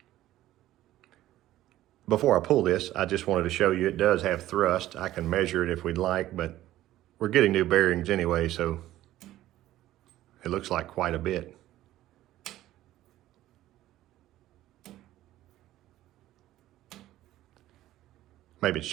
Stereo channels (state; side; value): quieter; left; 14.5 dB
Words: Before I pull this, I just wanted to show you it does have thrust. I can measure it if we'd like, but we're getting new bearings anyway, so it looks like quite a bit. Maybe it's